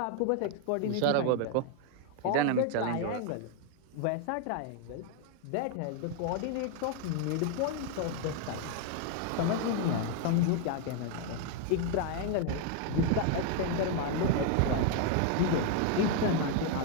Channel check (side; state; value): both; different; correlation 0.01